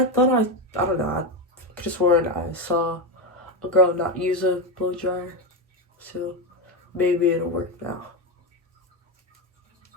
thought I don't know, I could have sworn I saw a girl not use a blow dryer. So maybe it'll work now.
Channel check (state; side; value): normal; both; correlation 0.12